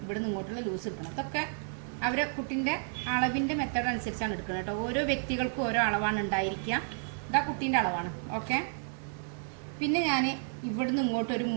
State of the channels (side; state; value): left; silent; 57 dB below the other